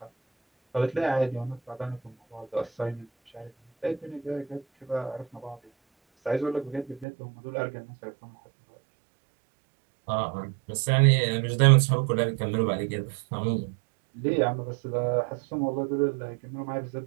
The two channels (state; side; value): drops out; left; at 7.1 s